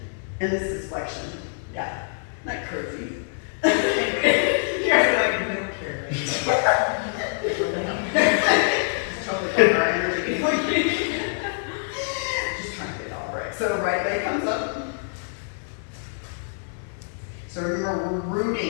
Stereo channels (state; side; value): silent; right; digital silence